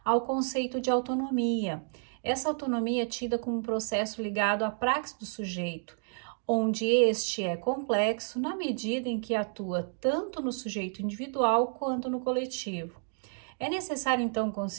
há o conceito de autonomia. Essa autonomia é tida como um processo ligado à praxis do sujeito, onde este é complexo na medida em que atua tanto no sujeito individual quanto no coletivo. É necessário, então,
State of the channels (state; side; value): silent; left; 57 dB below the other